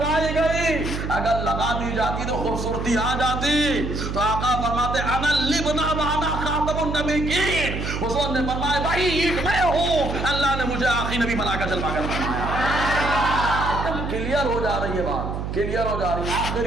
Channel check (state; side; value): noise; right; hum, 4 dB below the sound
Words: گئی؟ اگر لگا دی جاتی تو خوبصورتی آ جاتی. تو آقا فرماتے انا اللبنہ وانا خاتم النبیین. حضور نے فرمایا بھائی اینٹ میں ہوں، اللہ نے مجھے آخری نبی بنا کر جلوا کر بنایا. کلیئر ہو جا رہی ہے بات، کلیئر ہو جا رہی ہے.